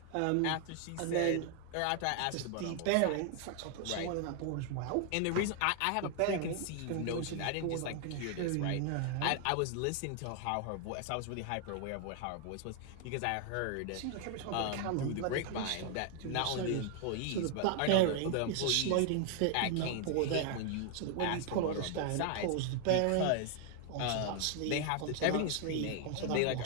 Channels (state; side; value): different; both; correlation 0.00